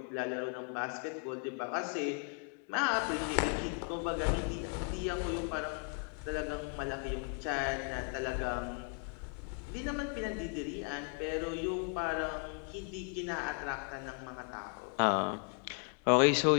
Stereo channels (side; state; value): right; quieter; 38.2 dB